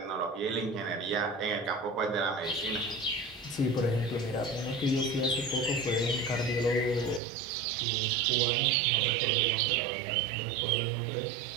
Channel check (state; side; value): drops out; left; at 7.2 s